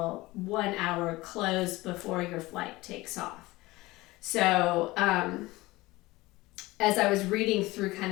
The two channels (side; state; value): right; quieter; 20.1 dB